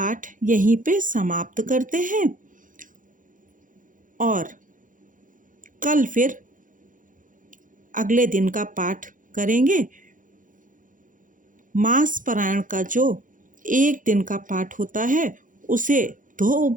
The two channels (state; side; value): late; left; 0.38 ms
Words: यहीं पे समाप्त करते हैं और कल फिर अगले दिन का पाठ करेंगे। मास पारायण का जो एक दिन का पाठ होता है, उसे 2